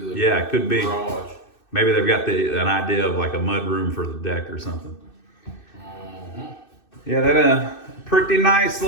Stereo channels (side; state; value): right; late; 2.6 ms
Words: the it could be. garage. Maybe they've got an idea of like a mud room for the deck or something. Yeah, that pretty nice